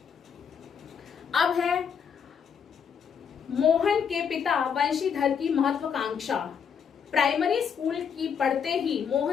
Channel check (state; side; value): quieter; right; 7.1 dB